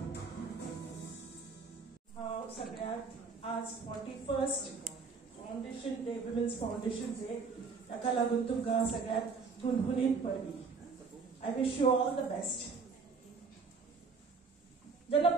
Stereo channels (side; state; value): left; quieter; 4.8 dB